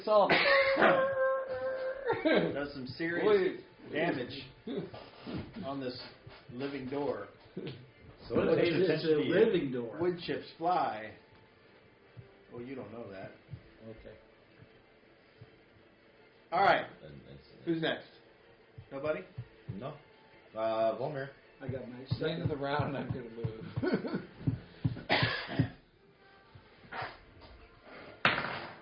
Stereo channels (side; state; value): both; identical; correlation 1.00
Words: does some serious Wait. damage on this living door. So But it pays it's attention a to you. living door. Wood chips fly. Well, you don't know that. Okay. All right. And it's- Who's next? Nobody? No. Volmir. I got my At the end second. of the round, I'm going to move.